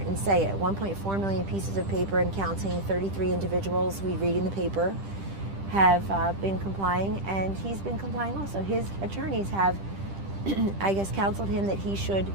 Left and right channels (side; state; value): left; late; 10 ms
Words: say it. 1.4 million pieces of paper and counting, 33 individuals we read in the paper have been complying, and he's been complying also. His attorneys have, I guess, counseled him that he should